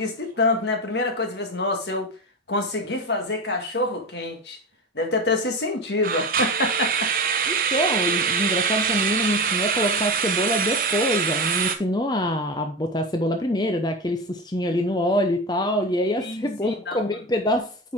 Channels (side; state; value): both; normal; correlation 0.23